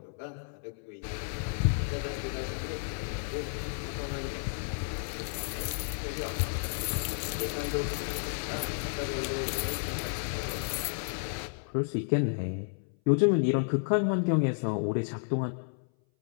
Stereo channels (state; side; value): silent; right; 57 dB below the other